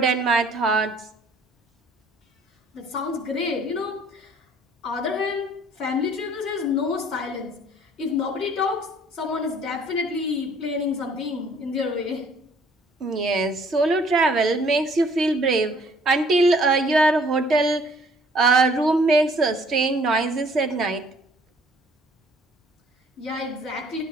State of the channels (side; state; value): both; normal; correlation 0.58